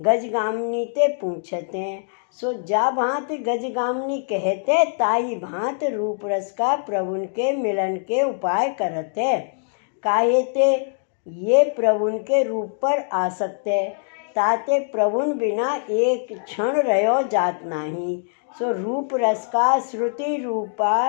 गजगामिनी ते पूछते हैं। सो जा भांत गजगामिनी कहते, ताई भांत रूप रस का प्रभु के मिलन के उपाय करते। काहे ते ये प्रभु के रूप पर आसक्त है। ताते प्रभु बिना एक क्षण रहो जात नहीं। सो रूप रस का श्रुति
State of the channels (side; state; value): right; silent; digital silence